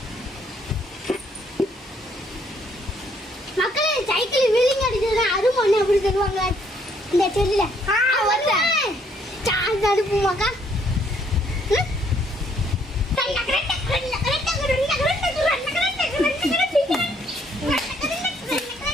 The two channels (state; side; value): normal; both; correlation 0.67